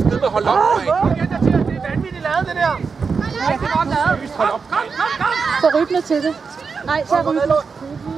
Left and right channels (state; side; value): quieter; left; 5.2 dB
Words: hold op, mand! Det er vanvittigt lavet, det der. Rigtig godt lavet. Hold op! Så rybner til det. Nej, så rybner.